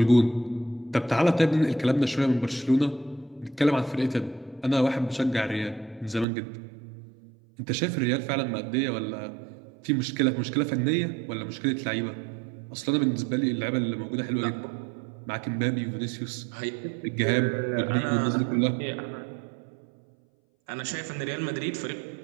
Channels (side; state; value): left; drops out; at 6.2 s